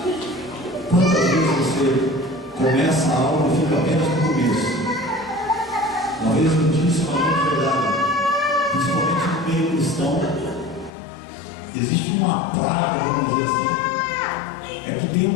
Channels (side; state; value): right; drops out; at 10.9 s